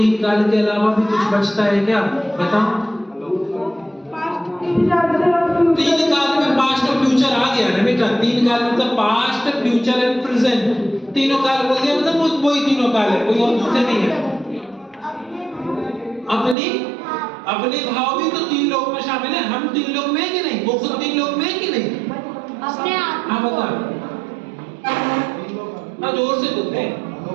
काल के अलावा भी कुछ बचता है क्या? बताओ। तीन काल में पास्ट और फ्यूचर आ गया ना बेटा। तीन काल मतलब पास्ट, फ्यूचर एंड प्रेजेंट। तीनों काल बोल दिया मतलब वही तीनों काल है, कोई और दूसरे नहीं है। अपने भाव भी तो तीन लोग में शामिल है। हम तीन लोग में है कि नहीं? वो खुद तीन लोग में है कि नहीं? अपने आप हाँ बता, जोर से बोलते हैं।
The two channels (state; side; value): drops out; left; at 16.6 s